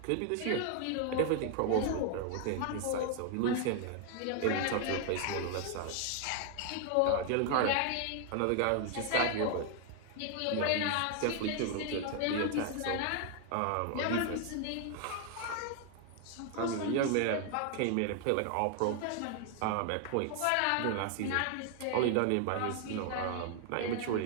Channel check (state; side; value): different; both; correlation 0.00